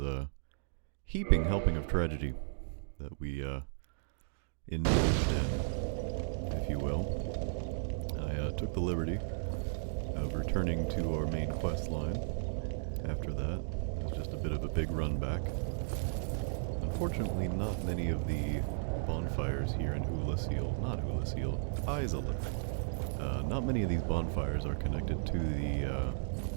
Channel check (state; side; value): silent; left; digital silence